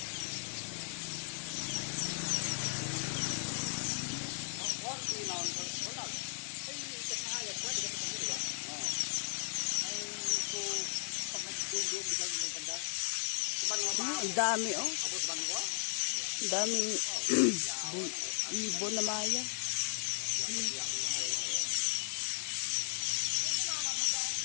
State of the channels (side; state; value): right; silent; digital silence